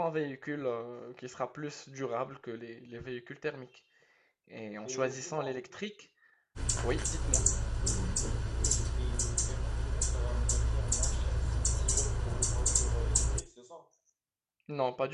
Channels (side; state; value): both; identical; correlation 1.00